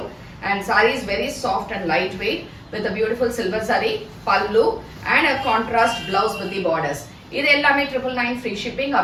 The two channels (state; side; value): identical; both; correlation 1.00